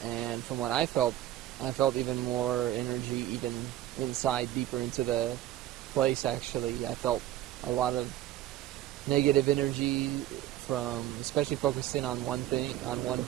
from what I felt even more energy even inside, deeper into the place. Actually, I felt a lot of negative energy from, especially focused in on one thing, on one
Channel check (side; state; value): left; quieter; 13.4 dB